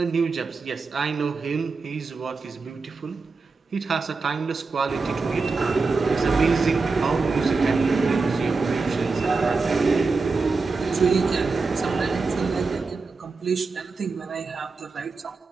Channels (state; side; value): quieter; left; 4.2 dB